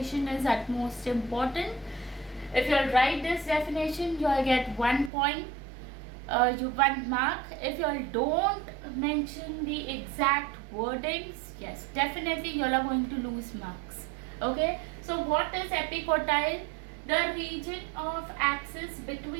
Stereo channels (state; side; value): drops out; left; at 5.1 s